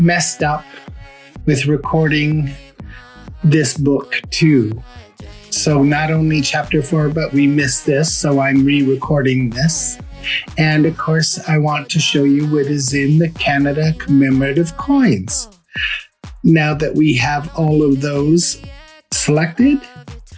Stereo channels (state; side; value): identical; both; correlation 1.00